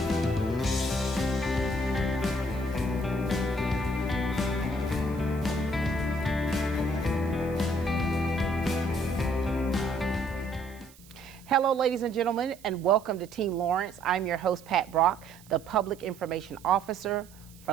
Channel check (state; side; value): noise; right; hiss, 24 dB below the sound